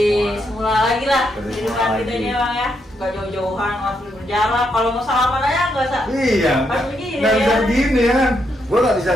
semula lagi lah Seperti kehidupan semula kita lagi. ini bang ya. Gak jauh-jauhan, nggak perlu berjalan. Kalau mau salaman aja nggak usah. Iya, Pas begini nggak bisa ya. begini ya kan? Gue nggak bisa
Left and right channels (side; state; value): both; normal; correlation 0.79